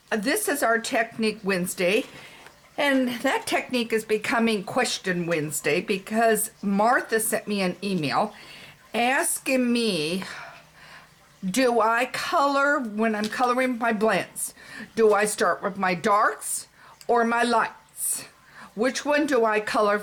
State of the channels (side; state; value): both; identical; correlation 1.00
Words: this is our Technique Wednesday. And that technique is becoming Question Wednesday because Martha sent me an email asking me, do I color when I'm coloring my blends? Do I start with my darks or my lights? Which one do I color